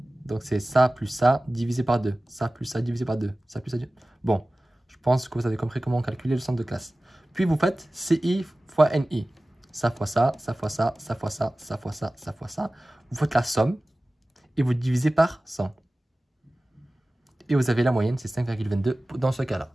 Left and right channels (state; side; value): normal; both; correlation 0.97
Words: c'est ça plus ça divisé par 2. Ça plus ça divisé par 2. Ça plus ça. Bon, je pense que vous avez compris comment calculer le centre de classe. Puis vous faites CI fois NI. Ça fois ça, ça fois ça, ça fois ça, ça fois ça, ça fois ça. Vous faites la somme et vous divisez par 100. Et vous avez la moyenne, c'est 5,22 dans ce cas-là.